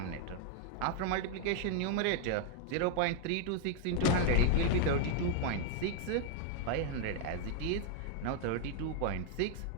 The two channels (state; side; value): different; both; correlation 0.00